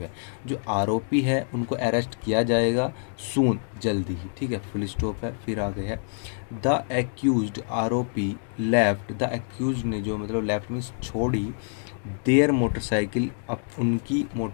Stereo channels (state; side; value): silent; right; 61 dB below the other